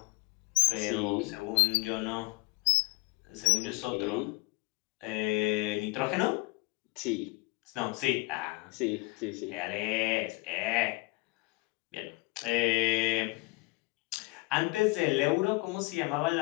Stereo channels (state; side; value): quieter; right; 24.7 dB